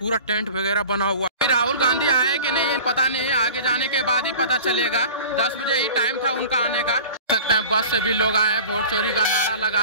टेंट वगैरह बना हुआ है। राहुल गांधी आए कि नहीं पता नहीं, आगे जाने के बाद ही पता चलेगा। 10 बजे ही टाइम था उनका आने का। सकते हैं बस से भी लोग आए हैं, वोट चोरी का नारा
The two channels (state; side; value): inverted; both; correlation -0.40